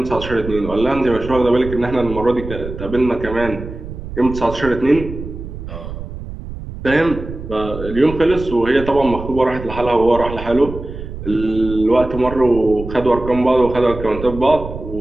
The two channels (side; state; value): right; noise; rumble, 10 dB below the sound